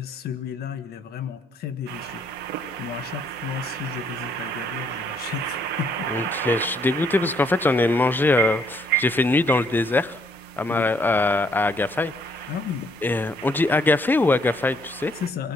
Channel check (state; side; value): normal; both; correlation 0.68